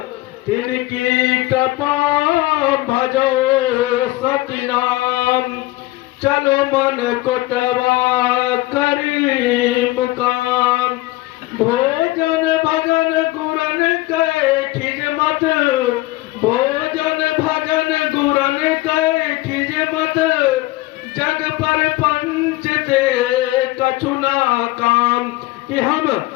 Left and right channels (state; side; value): quieter; right; 19.0 dB